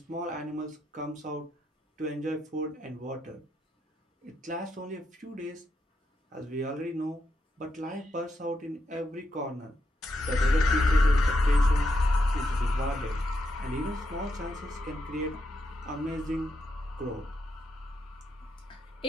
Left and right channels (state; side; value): normal; both; correlation 0.82